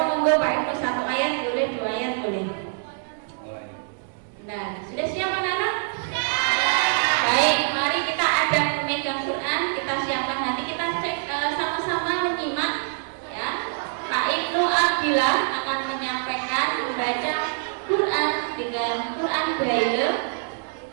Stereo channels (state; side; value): silent; left; digital silence